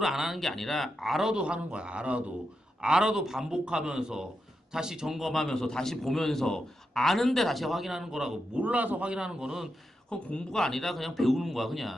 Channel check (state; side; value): normal; both; correlation 0.86